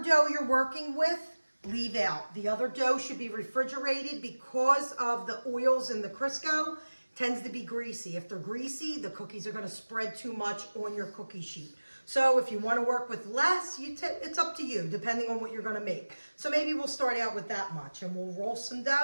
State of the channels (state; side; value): inverted; both; correlation -1.00